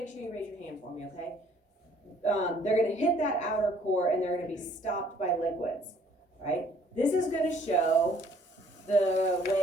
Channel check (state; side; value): normal; both; correlation 0.60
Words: sure you raise your hand for me, okay? They're going to hit that outer core and they're going to be stopped by liquids, right? This is going to show the